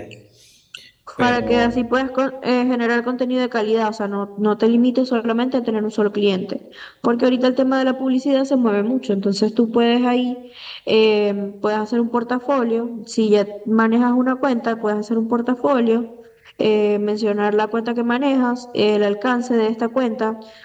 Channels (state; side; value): identical; both; correlation 1.00